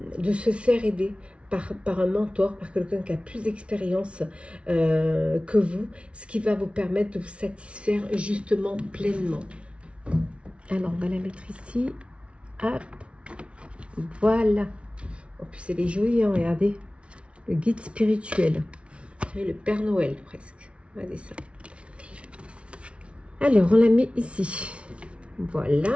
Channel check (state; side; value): late; left; 0.060 ms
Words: se faire aider par un mentor, par quelqu'un qui a plus d'expérience que vous, ce qui va vous permettre de vous satisfaire justement pleinement. Alors, on va la mettre ici. Hop. Voilà. En plus, elle est jolie, hein, regardez. Le guide spirituel. Le Père Noël, presque. Regardez ça. Alors, on la met ici.